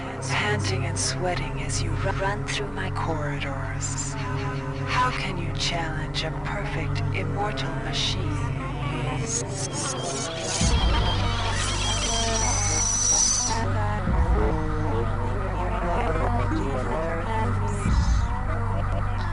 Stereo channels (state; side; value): identical; both; correlation 1.00